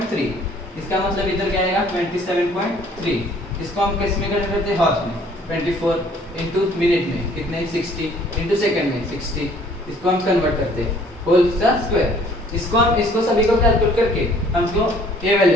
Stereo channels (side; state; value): both; normal; correlation 0.57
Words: इसका मतलब इधर क्या आएगा 27.3। इसको हम किस में कन्वर्ट करते हैं, हॉर्स में, 24 इंटू मिनट में कितने 60 इंटू सेकंड में 60। इसको हम कन्वर्ट करते हैं होल का स्क्वायर। इसको सभी को कैलकुलेट करके हमको ये